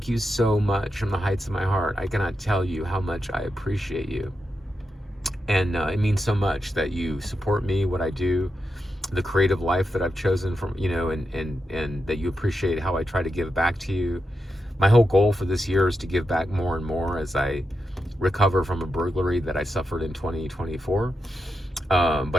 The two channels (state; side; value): normal; both; correlation 0.87